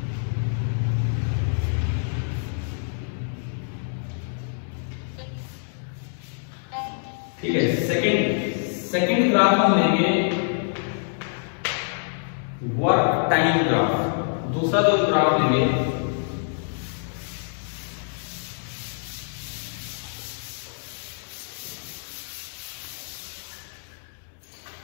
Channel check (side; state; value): right; silent; digital silence